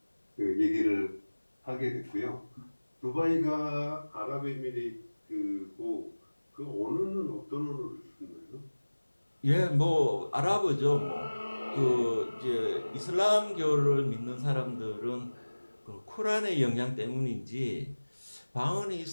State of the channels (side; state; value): both; inverted; correlation -1.00